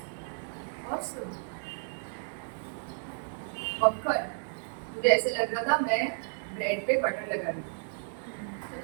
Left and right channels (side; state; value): left; silent; digital silence